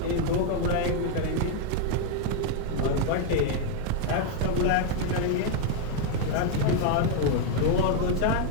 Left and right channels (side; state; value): both; different; correlation 0.01